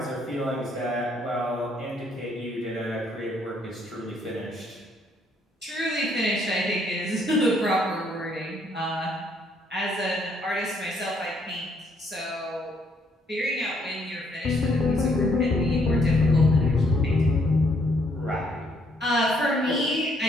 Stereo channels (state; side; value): normal; both; correlation 0.69